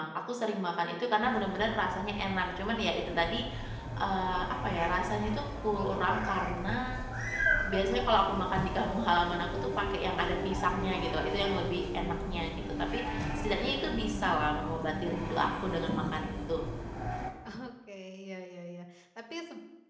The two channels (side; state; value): both; identical; correlation 1.00